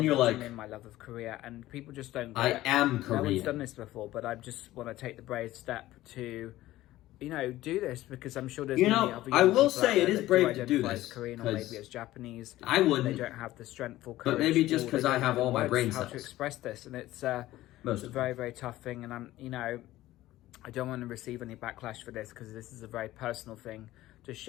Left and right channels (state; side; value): quieter; right; 15.8 dB